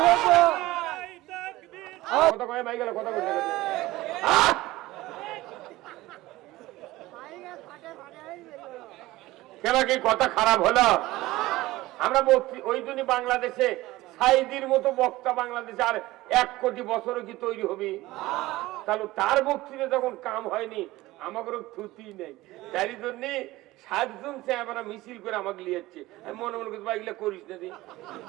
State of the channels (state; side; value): quieter; left; 18.2 dB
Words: কথা কয়ে ভাই গেল, কথা বলতে গেছে। কেন কি কথা খারাপ হলো? আমরা ওই জন্য বাংলাদেশে সাইদির মতো বক্তা বাংলাদেশে আর 1 কোটি বছরও কি তৈরি হবে? তাহলে তার বক্তৃতা যখন কাম হয়নি, আমাকে থুতি নেই। তাই জন্য 7 জন চেহারা মিছিল করে আমাকে লিয়েছে। আমি মনে মনে করছি ভাই এগুলো করিস না,